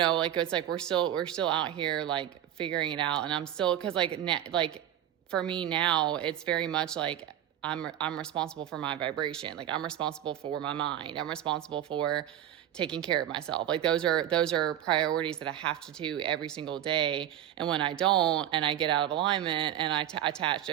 it's like we're still out here like figuring it out, and I'm still, because like for me now, it's very much like I'm responsible for my vibration. Like, I'm responsible for my mind. I'm responsible for taking care of myself. Like, those are priorities that I have to do every single day. And when I don't, and I get out of alignment, and I attach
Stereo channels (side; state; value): left; quieter; 11.2 dB